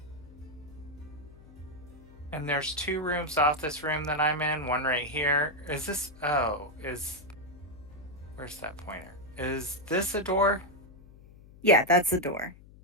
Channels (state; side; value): noise; left; hum, 21 dB below the sound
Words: And there's 2 rooms off this room that I'm in. One right here. Is this... Oh, where's that pointer? Is this a door? Yeah, that's the door.